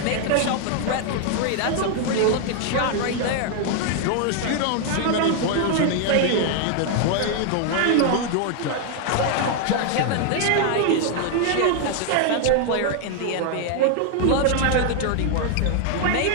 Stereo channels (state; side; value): different; both; correlation 0.00